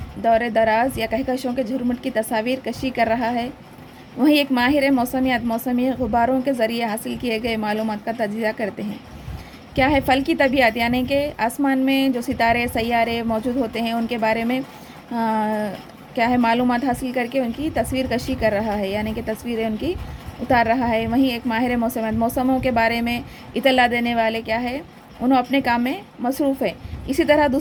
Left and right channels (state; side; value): identical; both; correlation 1.00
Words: دور دراز یا کہکشوں کے جھرمٹ کی تصاویر کشی کر رہا ہے، وہیں ایک ماہر موسمی غباروں کے ذریعے حاصل کیے گئے معلومات کا تجزیہ کرتے ہیں۔ کیا ہے فلکی طبیعت؟ یعنی کہ آسمان میں جو ستارے، سیارے موجود ہوتے ہیں، ان کے بارے میں کیا ہے؟ معلومات حاصل کر کے ان کی تصویر کشی کر رہا ہے، یعنی کہ تصویریں ان کی اتار رہا ہے۔ وہیں ایک ماہر موسموں کے بارے میں اطلاع دینے والے کیا ہے؟ انہوں اپنے کام میں مصروف ہے۔ اسی طرح